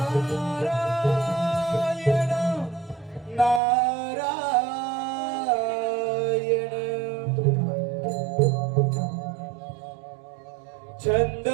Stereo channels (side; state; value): left; drops out; at 3.6 s